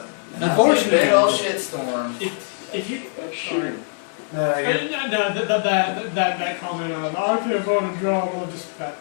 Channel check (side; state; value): right; silent; 64 dB below the other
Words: Unfortunately- Big old shitstorm. If you, sorry. No, you're, That comment of, I can't find a job, well, just, that